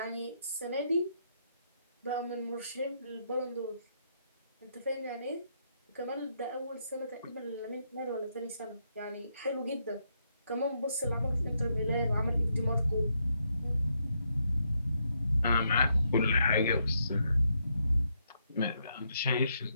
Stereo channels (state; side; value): inverted; both; correlation -0.78